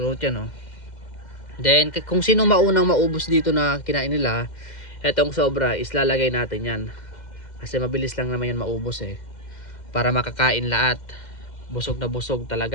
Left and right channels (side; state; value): right; late; 2.1 ms